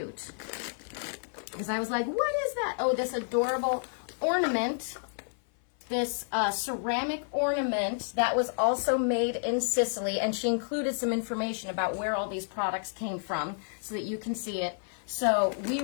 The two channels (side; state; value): right; silent; 55 dB below the other